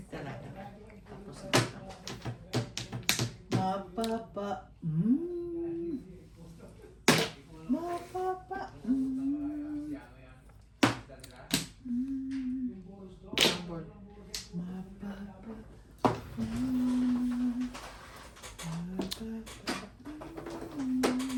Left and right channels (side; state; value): both; identical; correlation 1.00